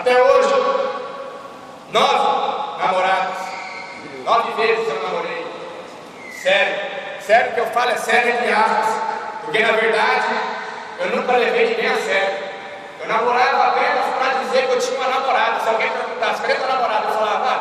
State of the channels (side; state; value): both; identical; correlation 1.00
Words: hoje, 9 namoradas. 9 vezes eu namorei. Sério que eu falo é sério entre aspas. Porque na verdade, eu nunca levei ninguém a sério. Eu namorava apenas para dizer que eu tinha uma namorada. Se alguém perguntasse, cadê tua namorada? Eu falava,